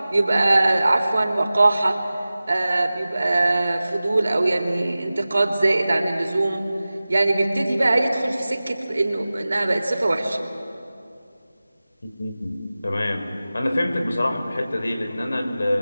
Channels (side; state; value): both; inverted; correlation -0.96